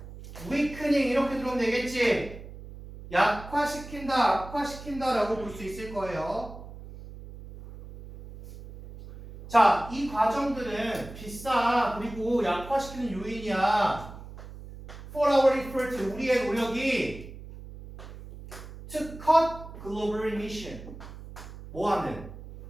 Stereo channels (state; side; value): noise; right; hum, 14 dB below the sound